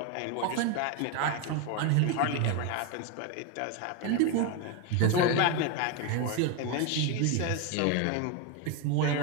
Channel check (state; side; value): different; both; correlation 0.02